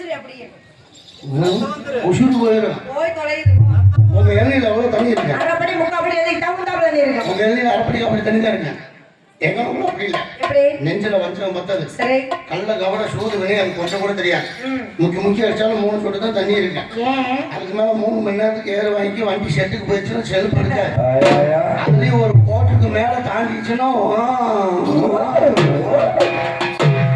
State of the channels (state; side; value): identical; both; correlation 1.00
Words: உசுறு போயிடும். போய் தொலையுது உங்க இளநீர் எவ்வளவு தண்ணி இருக்கு? அரைப்படி முக்காப்படி எதுக்கு தகுந்தாப்புல தண்ணி இருக்கும். உங்க இளநீர் அரைப்படி அப்படி தண்ணி தான் இருக்கு. எங்க ஊர்ல அப்படி இல்லை. எப்படி நெஞ்சில வஞ்சம் பத்தது. சரி கல்ல கவட சூது வினை அது கொஞ்சம் கூட தெரியாது. முக்கி அடிச்சாலும் 3 சொட்டு தான் தண்ணி இருக்கு. ஏன் அதுக்கு மேல 3 மணி நேரத்துக்கு ஏற வாங்கி வண்டி செட்டுக்கு போயிடுச்சுன்னா செல்ஃப் இருக்காது. அதுலயும் ஒரு கோட்டுக்கு மேல தாண்டிச்சுன்னா